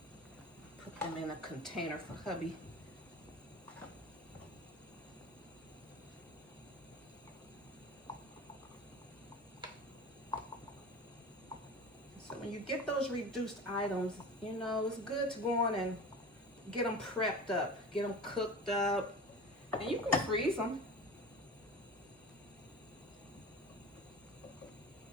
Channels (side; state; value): both; normal; correlation 0.34